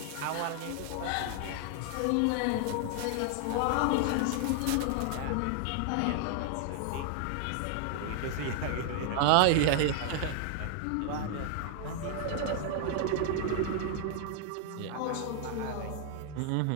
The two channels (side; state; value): both; different; correlation 0.00